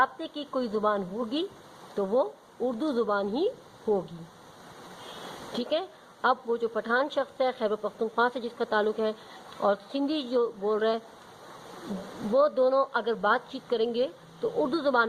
کی کوئی زبان ہوگی تو وہ اردو زبان ہی ہوگی، ٹھیک ہے۔ اب وہ جو پٹھان شخص ہے خیبر پختونخوا سے جس کا تعلق ہے اور سندھی جو بول رہا ہے، وہ دونوں اگر بات چیت کریں گے تو اردو زبان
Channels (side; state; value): both; identical; correlation 1.00